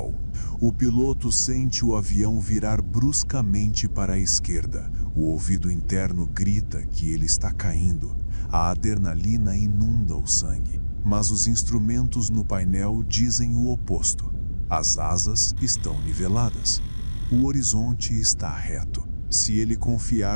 O piloto sente o avião virar bruscamente para a esquerda. O ouvido interno grita que ele está caindo. A adrenalina inunda o sangue. Mas os instrumentos no painel dizem o oposto. As asas estão niveladas. O horizonte está reto. Se ele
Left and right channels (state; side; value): inverted; both; correlation -1.00